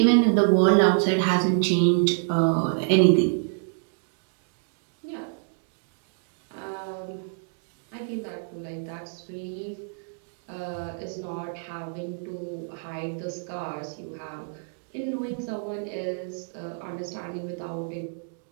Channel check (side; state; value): left; silent; digital silence